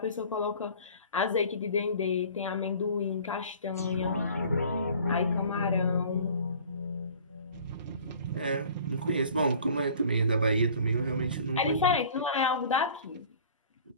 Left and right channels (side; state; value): both; inverted; correlation -0.48